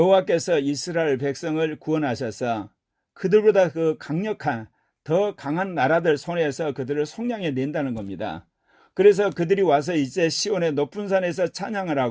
이스라엘 백성을 구원하셔서 그들보다 그 강력한 더 강한 나라들 손에서 그들을 속량해 낸다는 겁니다. 그래서 그들이 와서 이제 시온의 높은 산에서 찬양을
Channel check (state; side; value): identical; both; correlation 1.00